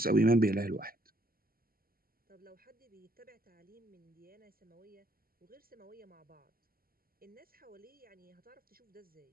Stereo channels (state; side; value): late; left; 0.42 ms